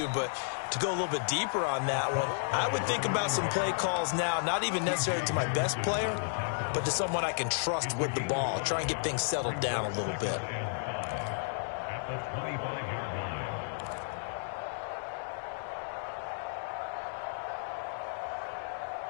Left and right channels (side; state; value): right; silent; 56 dB below the other